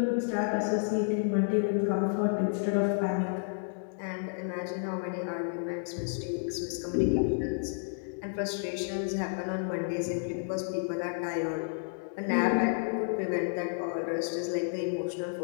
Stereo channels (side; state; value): right; silent; digital silence